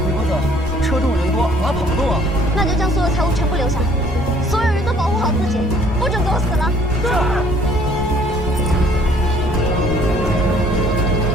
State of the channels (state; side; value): normal; both; correlation 0.59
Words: 那就将所有财物全部留下，所有人都保护好自己，不准给我死了。是。